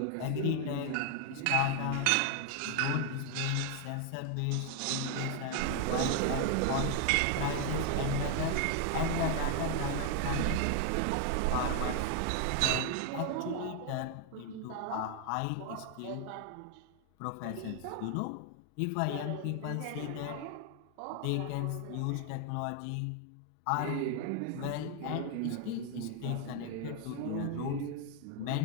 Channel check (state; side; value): different; both; correlation 0.00